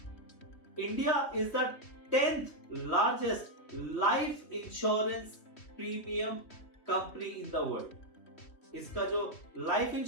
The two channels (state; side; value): late; right; 3.1 ms